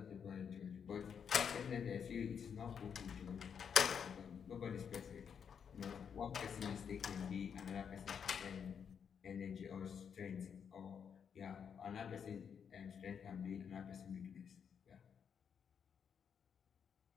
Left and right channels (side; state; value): right; quieter; 7.3 dB